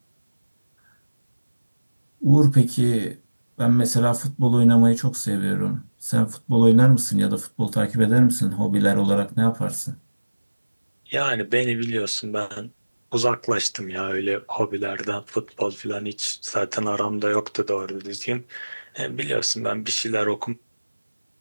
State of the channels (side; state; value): both; inverted; correlation -1.00